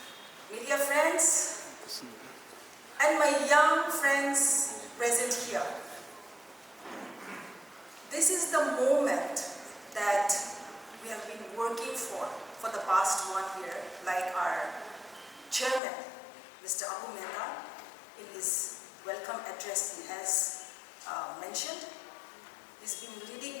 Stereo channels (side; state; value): right; drops out; at 15.8 s